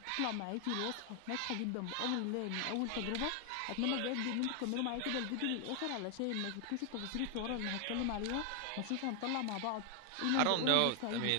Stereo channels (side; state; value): both; different; correlation 0.00